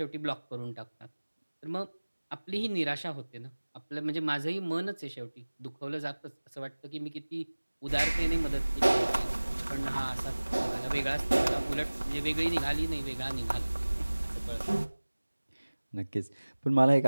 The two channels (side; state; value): both; inverted; correlation -1.00